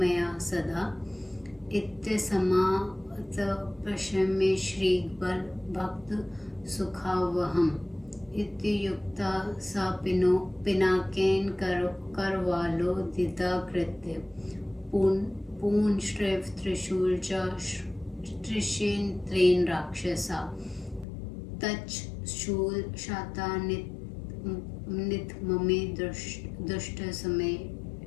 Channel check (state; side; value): drops out; right; at 21.1 s